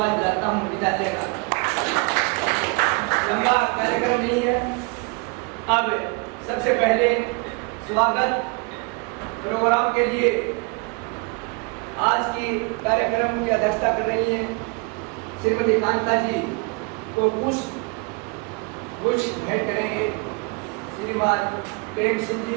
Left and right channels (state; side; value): quieter; left; 30.4 dB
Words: दिलाता हूँ। विद्यालय का लंबा कार्यक्रम नहीं है। अब सबसे पहले स्वागत प्रोग्राम के लिए आज की कार्यक्रम की अध्यक्षता कर रही हैं श्रीमती कांता जी को कुछ भेंट करेंगे श्रीमान प्रेम सिंह जी,